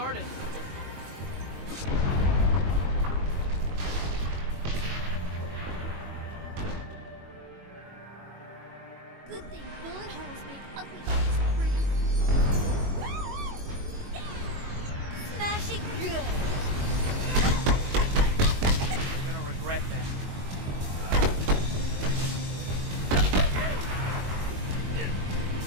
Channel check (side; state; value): left; late; 22 ms